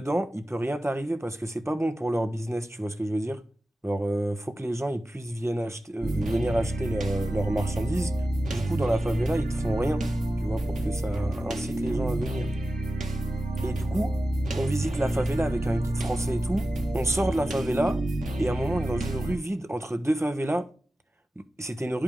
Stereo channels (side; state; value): both; normal; correlation 0.94